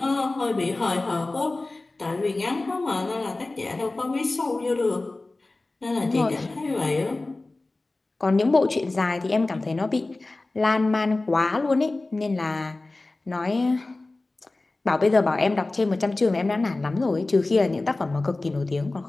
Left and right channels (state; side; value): quieter; right; 3.1 dB